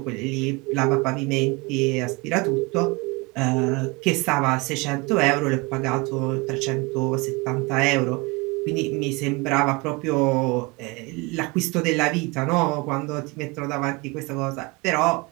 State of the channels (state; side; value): quieter; left; 25.9 dB